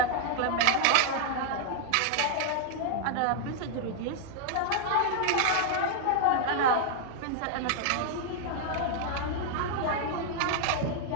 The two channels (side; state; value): both; different; correlation -0.01